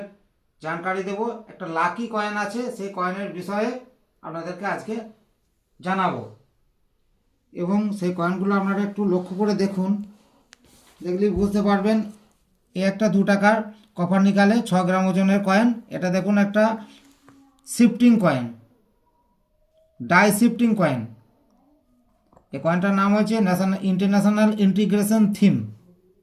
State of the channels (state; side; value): identical; both; correlation 1.00